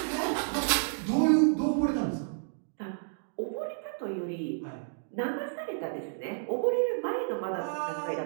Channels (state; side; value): silent; left; digital silence